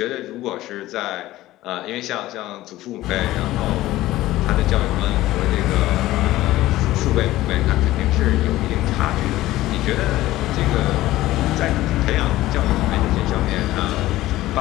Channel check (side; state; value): right; quieter; 16.2 dB